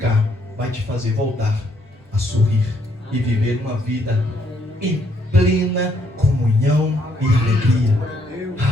vai te fazer voltar a sorrir e viver uma vida em plena comunhão e alegria.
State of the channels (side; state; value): both; normal; correlation 0.70